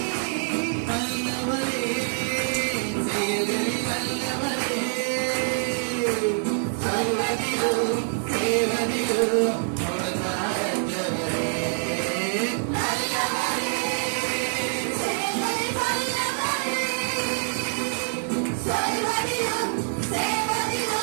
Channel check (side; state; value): left; silent; digital silence